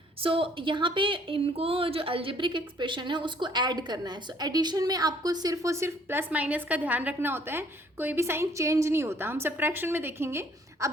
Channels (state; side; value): normal; both; correlation 0.61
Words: So यहाँ पे इनको जो अलजेब्रिक एक्सप्रेशन है उसको ऐड करना है। सो एडिशन में आपको सिर्फ और सिर्फ प्लस माइनस का ध्यान रखना होता है, कोई भी साइन चेंज नहीं होता। हम सब्ट्रैक्शन में देखेंगे।